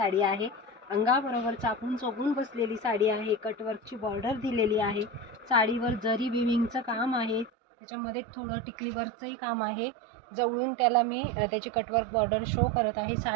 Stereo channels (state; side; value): drops out; left; at 7.5 s